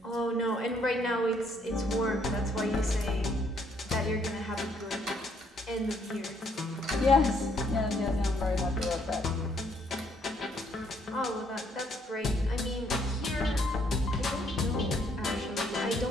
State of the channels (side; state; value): both; normal; correlation 0.68